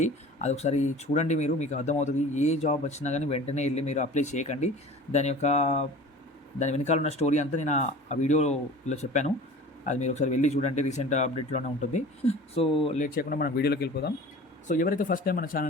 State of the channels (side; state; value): both; normal; correlation 0.41